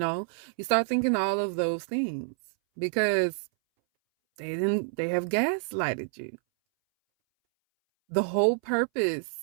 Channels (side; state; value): left; silent; 59 dB below the other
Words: start thinking all of those things because they have gaslighted you. The whole purpose